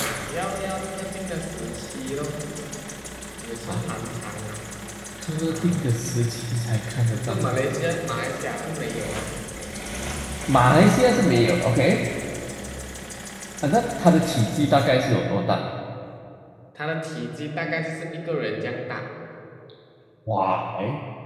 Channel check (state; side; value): identical; both; correlation 1.00